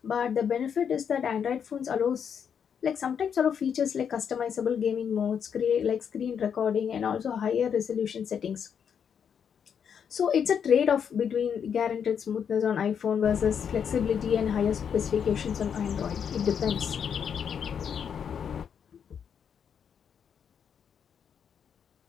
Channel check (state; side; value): quieter; right; 7.6 dB